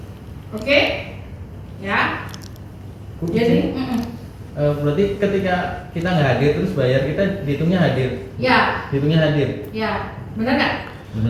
Oke? Ya. Jadi, berarti ketika kita nggak hadir terus bayar, kita dihitungnya hadir. ya, Dihitungnya hadir. ya, benar nggak?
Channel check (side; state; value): both; identical; correlation 1.00